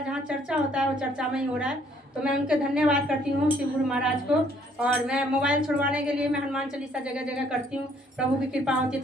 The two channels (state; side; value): normal; both; correlation 0.64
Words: जहाँ चर्चा होता है वो चर्चा में ही हो रहा है। तो मैं उनके धन्यवाद करती हूँ शिव गुरु महाराज को। और मैं मोबाइल छुड़वाने के लिए मैं हनुमान चालीसा जगह जगह करती हूँ। प्रभु की कृपा होती है।